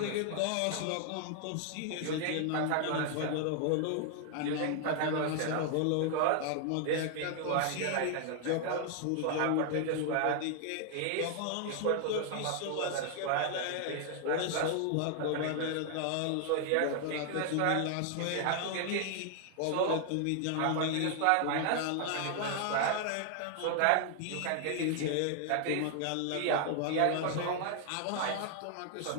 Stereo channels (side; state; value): both; different; correlation 0.00